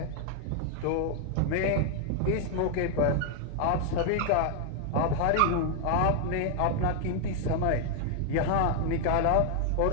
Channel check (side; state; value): both; different; correlation 0.00